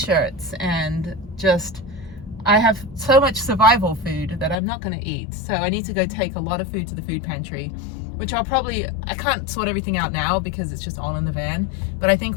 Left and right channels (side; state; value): right; drops out; at 4.5 s